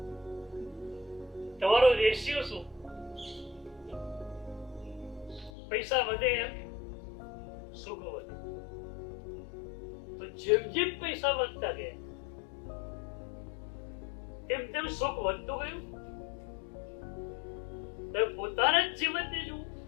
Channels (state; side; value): drops out; right; at 5.5 s